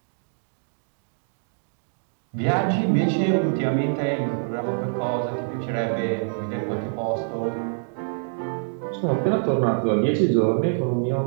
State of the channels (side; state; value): left; silent; digital silence